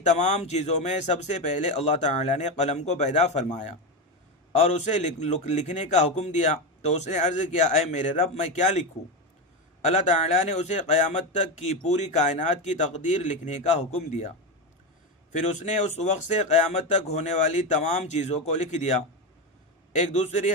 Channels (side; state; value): both; normal; correlation 0.14